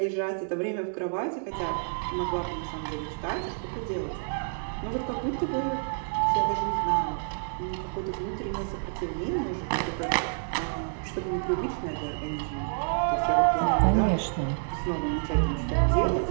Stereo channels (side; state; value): left; silent; digital silence